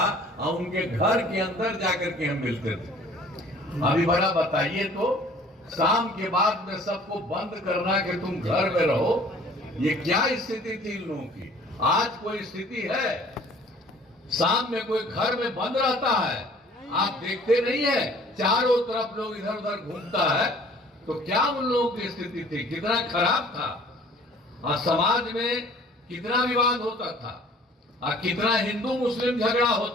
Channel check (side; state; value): both; normal; correlation 0.52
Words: और उनके घर के अंदर जाकर के हम मिलते थे। अभी बड़ा बताइए तो शाम के बाद में सबको बंद करना कि तुम घर में रहो, ये क्या स्थिति थी इन लोगों की। आज कोई स्थिति है शाम में कोई घर में बंद रहता है, आप देखते नहीं है चारों तरफ लोग इधर उधर घूमता है, तो क्या उन लोगों की स्थिति थी, कितना खराब था। और समाज में कितना विवाद होता था और कितना हिंदू मुस्लिम झगड़ा